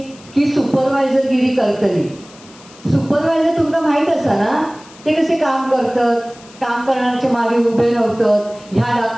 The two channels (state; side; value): noise; left; hiss, 23 dB below the sound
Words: की सुपरवायझरगिरी करतली. सुपरवायझर तुमका माहित असा ना, ते कसे काम करतात, काम करण्याच्या मागे उभे नव्हतात, ह्या